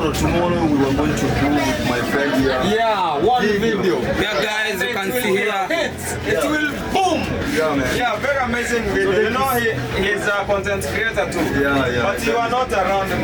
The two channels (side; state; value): both; identical; correlation 1.00